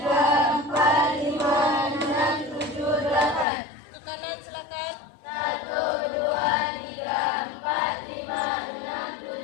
4, 5, 6, 7, 8. Ke kanan silakan. 1, 2, 3, 4, 5, 6,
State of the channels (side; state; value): right; drops out; at 3.5 s